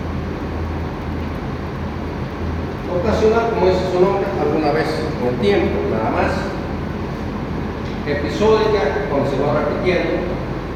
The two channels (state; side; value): identical; both; correlation 1.00